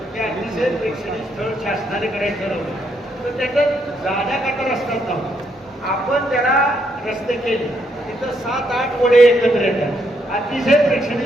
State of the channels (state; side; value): normal; both; correlation 0.75